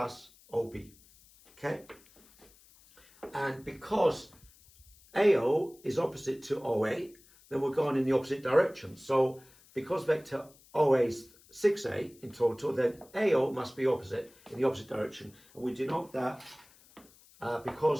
OB, okay? And because AO is opposite to OA, then we're going in the opposite direction. So because vector OA is 6A in total, then AO must be opposite in the opposite direction. And we denote that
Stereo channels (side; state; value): left; noise; hiss, 27 dB below the sound